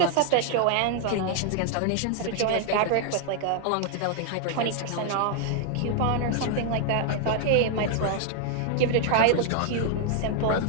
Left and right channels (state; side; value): different; both; correlation 0.00